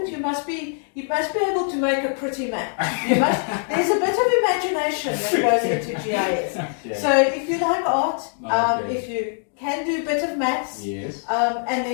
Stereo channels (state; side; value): silent; right; 57 dB below the other